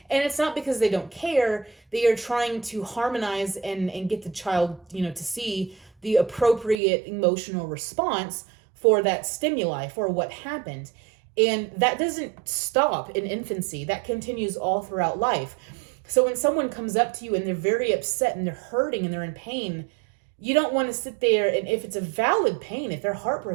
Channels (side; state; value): left; drops out; at 6.8 s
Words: And it's not because they don't care. They are trying to harmonize and get the child, to see the appropriate emotional response for that stimuli, for what happened. And that doesn't stop in infancy. That continues all throughout life. So when someone comes up to you and they're very upset and they're hurting and they're in pain, you don't want to sit there, and if it's a valid pain, if they're